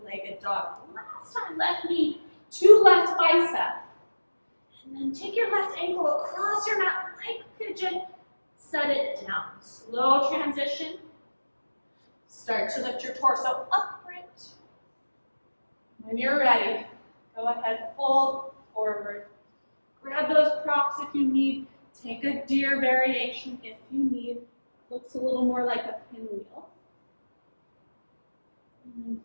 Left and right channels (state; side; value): inverted; both; correlation -1.00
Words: dog. Last time, left knee to left bicep. And then take your left ankle across your mat like pigeon. Set it down. Slow transition. Start to lift your torso upright. When you're ready, go ahead, fold forward. Grab those props if you need. Take a deer variation if you need. Looks a little more like a pinwheel. And then